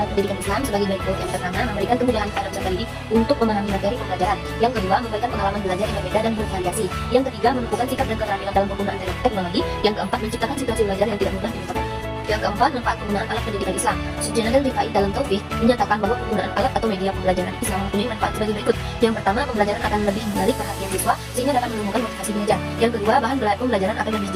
alat pendidikan Islam sebagai berikut. Yang pertama, memberikan kemudahan kepada peserta didik untuk memahami materi pembelajaran. Yang kedua, memberikan pengalaman belajar yang berbeda dan bervariasi. Yang ketiga, menumbuhkan sikap dan keterampilan dalam penggunaan teknologi. Yang keempat, menciptakan situasi belajar yang tidak mudah dilupakan. Yang keempat, manfaat penggunaan alat pendidikan Islam. Sujanan Rifai dalam Taufik menyatakan bahwa penggunaan alat atau media pembelajaran Islam mempunyai manfaat sebagai berikut. Yang pertama, pembelajaran akan lebih menarik perhatian siswa sehingga dapat menemukan motivasi belajar. Yang kedua, bahan pembelajaran akan lebih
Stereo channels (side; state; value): both; identical; correlation 1.00